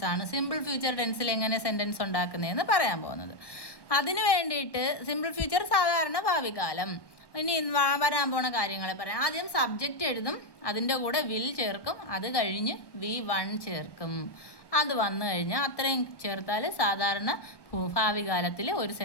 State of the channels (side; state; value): right; late; 1.1 ms